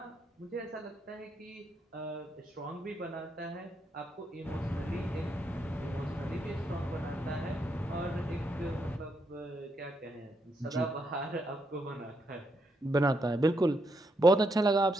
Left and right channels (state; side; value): normal; both; correlation 0.79